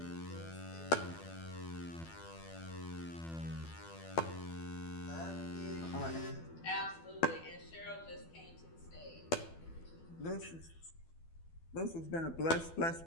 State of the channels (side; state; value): right; late; 12 ms